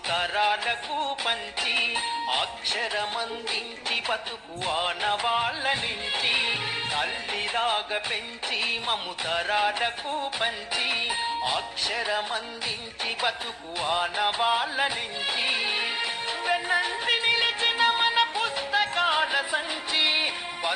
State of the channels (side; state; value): both; identical; correlation 1.00